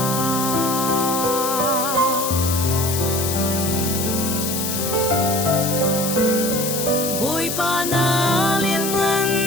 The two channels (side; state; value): left; noise; hiss, 3 dB below the sound